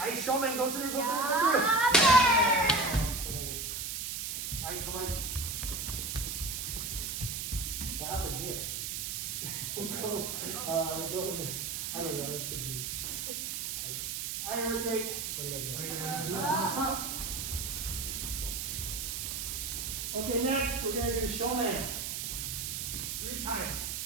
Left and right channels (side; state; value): right; noise; hiss, 3 dB below the sound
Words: Ice showman. Go through. Go through. Go through. Alright, come on. What happened here? I don't know. I rotate. Okay, next we're going to do showman. 3 times,